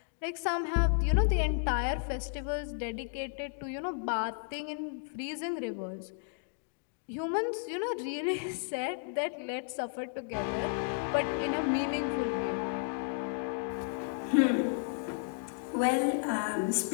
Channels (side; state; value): right; silent; digital silence